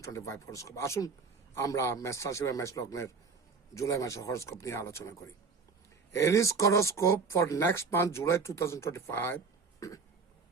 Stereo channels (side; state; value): left; quieter; 4.9 dB